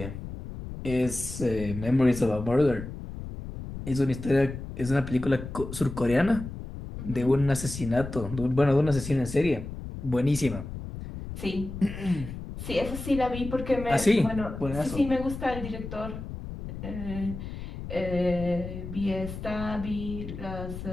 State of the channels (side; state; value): left; noise; rumble, 9 dB below the sound